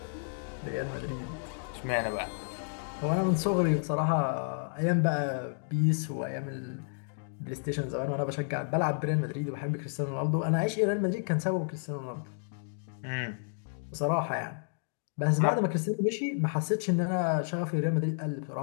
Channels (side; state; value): right; silent; digital silence